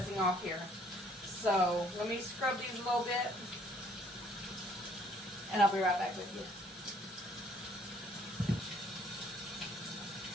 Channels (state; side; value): normal; both; correlation 0.62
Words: off here. So let me scrub these a little bit, and I'll be right back with you.